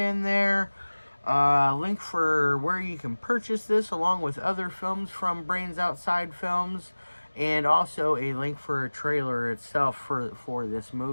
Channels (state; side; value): inverted; both; correlation -1.00